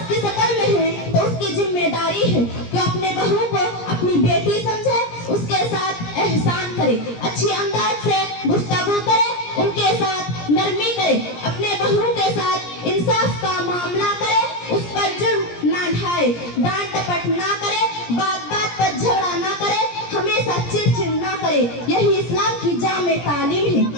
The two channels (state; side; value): late; right; 17 ms